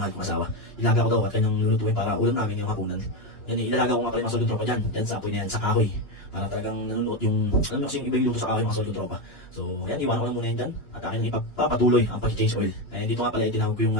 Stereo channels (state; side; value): late; right; 2.9 ms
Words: kong asawa. Ilaga ko daw at kanyang lulutuin para ulam namin ngayong hapunan. Yan, ilalaga ko nga pala yung mga solid kong tropa dyan sa apoy na yan, sa kahoy. Para talagang nanunuot yung, alam mo kasi yung iba yung luto sa kahoy mga solid kong tropa. So yan, iwanan ko na muna yan dyan. At akin nang ipapatuloy ang pag-change oil. Dito nga pala tinawag ko yung